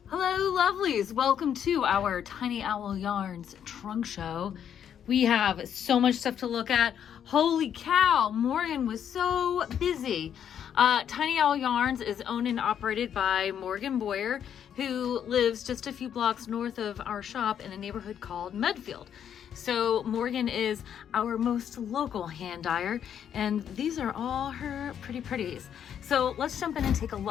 Hello, lovelies. Welcome to our Tiny Owl Yarns trunk show. We have so much stuff to look at. Holy cow, Morgan was so busy. Tiny Owl Yarns is owned and operated by Morgan Boyer, who lives just a few blocks north of our shop in a neighborhood called Medfield. So Morgan is our most local hand dyer, and these are all her pretties. So let's jump in and take a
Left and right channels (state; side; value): quieter; right; 8.9 dB